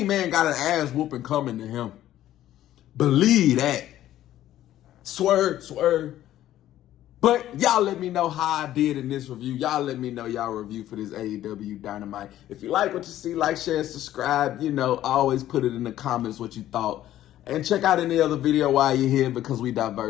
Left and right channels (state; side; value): quieter; right; 13.0 dB